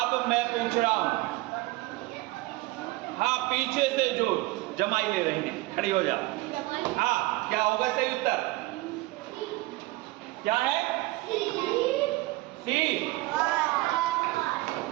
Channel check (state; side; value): quieter; left; 20.6 dB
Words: मैं पूछ रहा हूं, हाँ, पीछे से जो जमाई ले रही है खड़ी हो जाओ। हाँ, क्या होगा सही उत्तर? क्या है? सी।